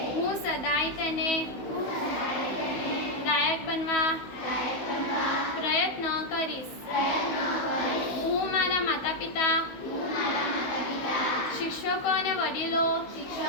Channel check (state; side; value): late; right; 16 ms